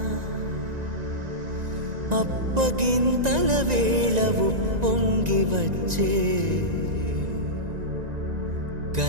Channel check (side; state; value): left; late; 1.9 ms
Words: అప్పగింతల వేళ ఉప్పొంగి వచ్చే